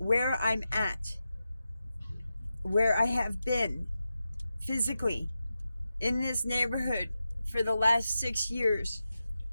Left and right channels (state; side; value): inverted; both; correlation -0.90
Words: I'm at, where I have been physically in this neighborhood for the last 6 years,